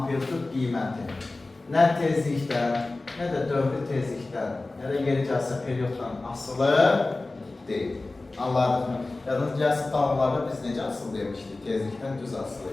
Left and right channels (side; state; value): right; quieter; 3.2 dB